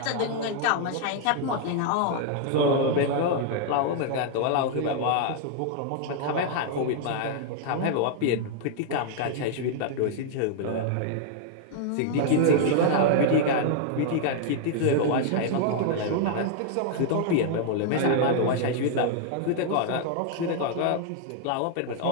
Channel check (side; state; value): both; different; correlation -0.01